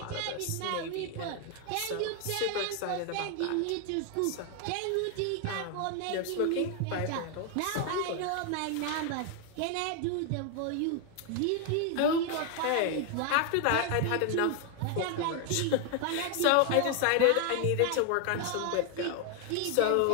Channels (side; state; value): both; different; correlation 0.01